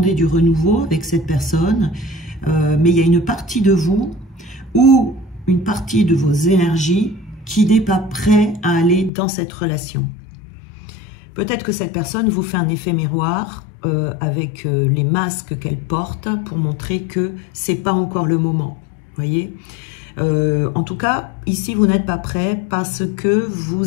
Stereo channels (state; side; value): drops out; right; at 9.1 s